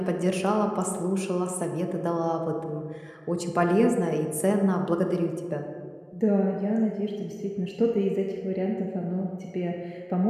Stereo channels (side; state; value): both; identical; correlation 1.00